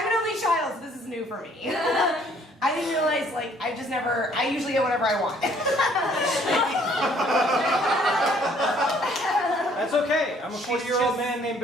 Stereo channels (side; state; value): both; normal; correlation 0.61